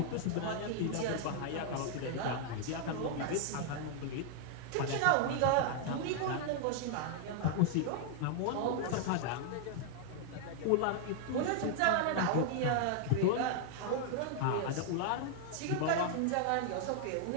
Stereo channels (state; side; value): different; both; correlation 0.00